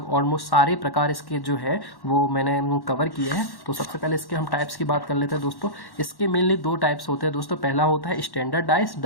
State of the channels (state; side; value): late; right; 1.1 ms